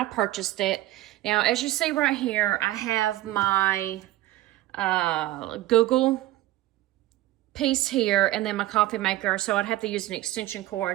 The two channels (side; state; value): left; quieter; 16.1 dB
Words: purchased it. Now, as you see right here, I have my Google piece here and then my coffee maker, so I'd have to use an extension